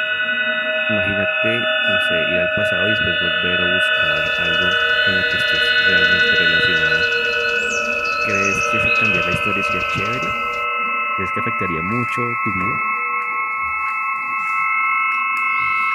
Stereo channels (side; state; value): both; identical; correlation 1.00